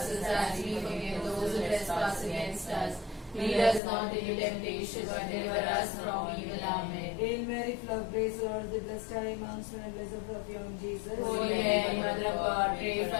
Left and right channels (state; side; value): drops out; right; at 3.8 s